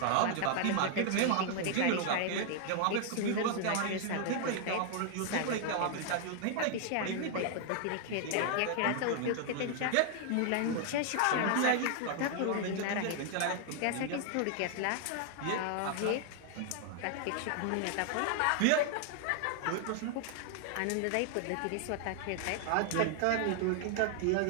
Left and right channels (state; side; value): different; both; correlation 0.00